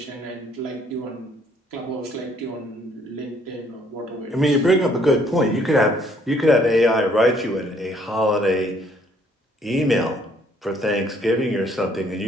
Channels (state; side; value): normal; both; correlation 0.64